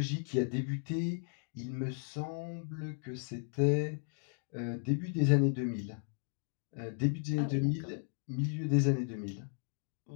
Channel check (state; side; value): silent; right; digital silence